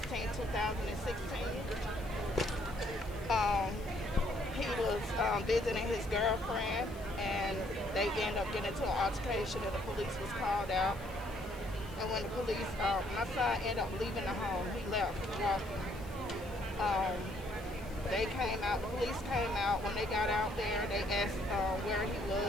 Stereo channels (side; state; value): left; noise; hiss, 21 dB below the sound